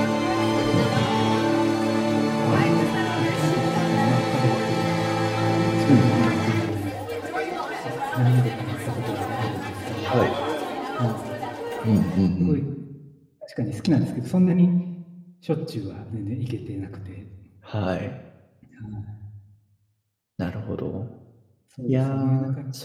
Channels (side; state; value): both; identical; correlation 1.00